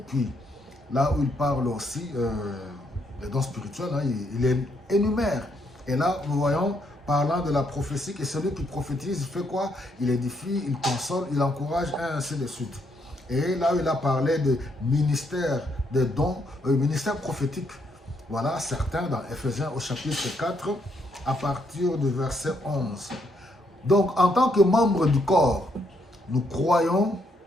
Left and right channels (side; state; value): both; normal; correlation 0.74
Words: là où il parle aussi des dons spirituels, hein, il énumère. Et là, nous voyons, parlant de la prophétie, que celui qui prophétise, il fait quoi? Il édifie, il console, il encourage, et ainsi de suite. Et là où il a parlé de ministère des dons, ministère prophétique. Voilà certains dans Éphésiens au chapitre 4, à partir du verset 11. Donc, en tant que membre du corps, nous croyons